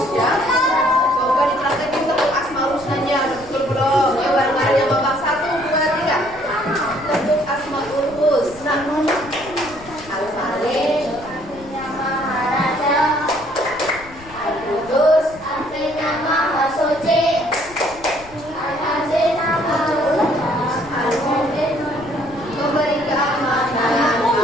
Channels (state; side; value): noise; left; rumble, 20 dB below the sound